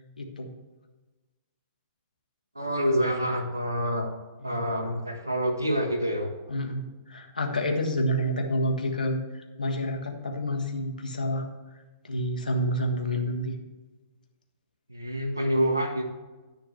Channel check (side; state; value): both; inverted; correlation -0.62